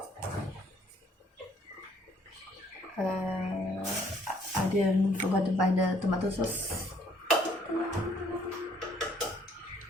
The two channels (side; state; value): both; normal; correlation 0.63